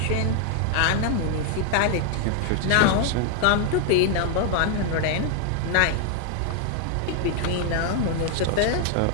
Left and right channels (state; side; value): different; both; correlation 0.00